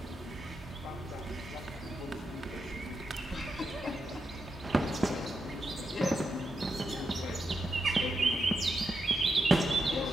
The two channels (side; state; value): both; normal; correlation 0.85